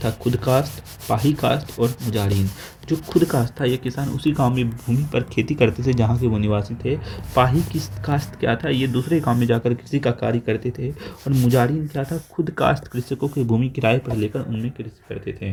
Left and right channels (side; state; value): both; identical; correlation 1.00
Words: था खुद कास्ट, पाही कास्ट और मुजाहिरीन। जो खुद कास्ट था, ये किसान उसी गांव में भूमि पर खेती करते थे जहां के वो निवासी थे। पाही की कास्ट क्या था? ये दूसरे गांव में जाकर कृषि का कार्य करते थे। और मुजाहिरीन क्या था? खुद कास्ट कृषकों की भूमि किराए पर लेकर उनमें कृषि करते थे।